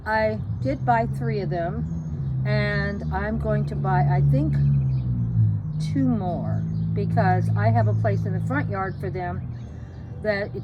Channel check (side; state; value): both; identical; correlation 1.00